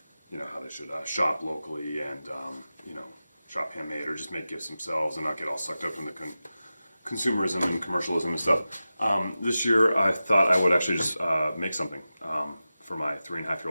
how they should shop locally and, shop handmade or just make gifts themselves and not get all sucked up in the consumerism and commercialism and stuff. This year I thought I would actually just make something for my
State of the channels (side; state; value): both; inverted; correlation -0.94